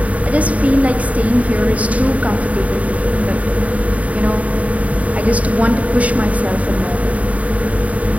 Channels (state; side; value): late; left; 0.069 ms